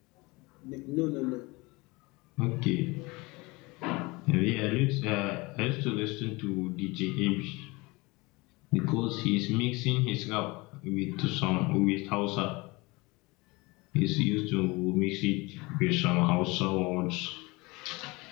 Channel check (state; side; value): quieter; right; 24.3 dB